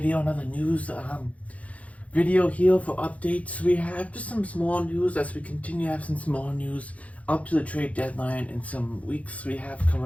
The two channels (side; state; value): right; late; 0.066 ms